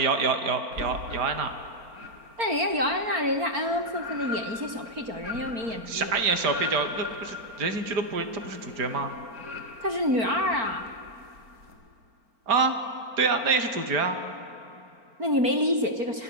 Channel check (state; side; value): late; left; 4.4 ms